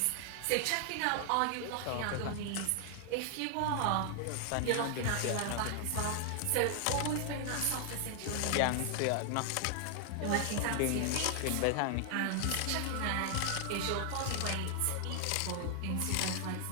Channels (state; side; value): different; both; correlation 0.00